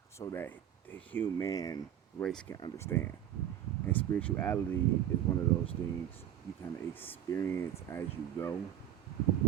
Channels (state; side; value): quieter; left; 11.0 dB